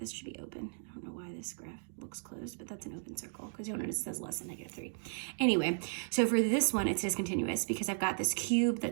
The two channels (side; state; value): left; silent; digital silence